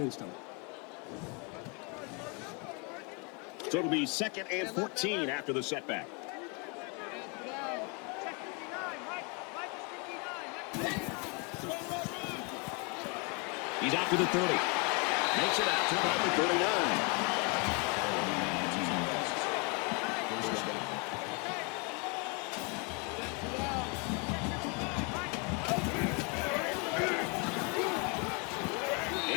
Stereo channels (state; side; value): quieter; right; 32.9 dB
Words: him. So it'll be 2nd and 14 after the setback. He's out to the 30. Makes it out to about the 39.